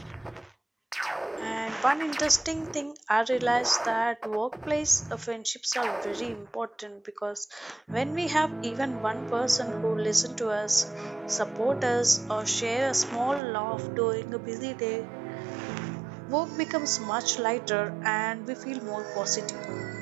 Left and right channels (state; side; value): drops out; left; at 13.4 s